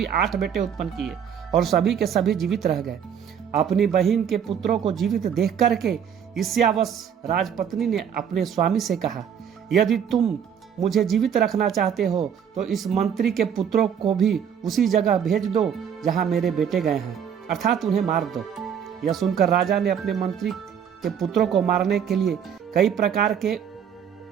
8 बेटे उत्पन्न किए और सभी के सभी जीवित रह गए। अपनी बहन के पुत्रों को जीवित देख करके ईर्ष्यावश राजपत्नी ने अपने स्वामी से कहा, यदि तुम मुझे जीवित रखना चाहते हो तो इस मंत्री के पुत्रों को भी उसी जगह भेज दो जहां मेरे बेटे गए हैं, अर्थात उन्हें मार दो। यह सुनकर राजा ने अपने मंत्री के पुत्रों को मारने के लिए कई प्रकार के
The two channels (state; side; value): quieter; left; 8.2 dB